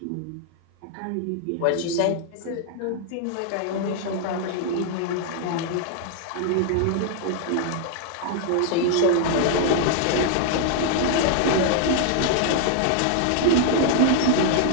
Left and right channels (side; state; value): both; different; correlation 0.00